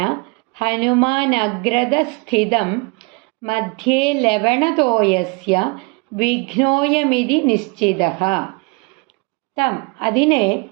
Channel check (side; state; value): left; quieter; 29.8 dB